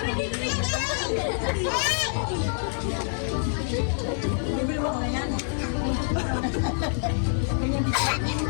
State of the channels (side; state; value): right; silent; 59 dB below the other